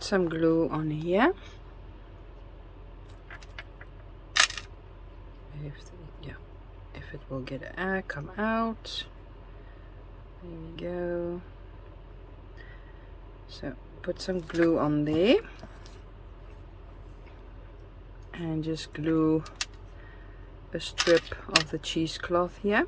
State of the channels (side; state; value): both; identical; correlation 1.00